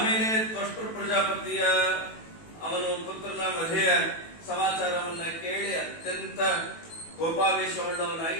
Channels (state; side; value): late; right; 18 ms